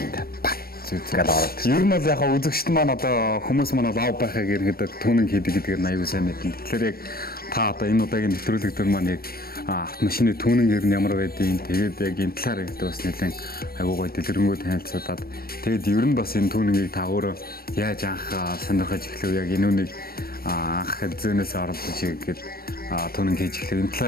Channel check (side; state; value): right; late; 0.44 ms